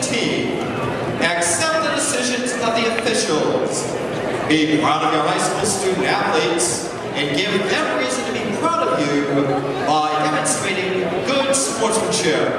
team, accept the decisions of the officials, be proud of your high school student athletes, and give them reason to be proud of you by demonstrating good sportsmanship.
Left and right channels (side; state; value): both; identical; correlation 1.00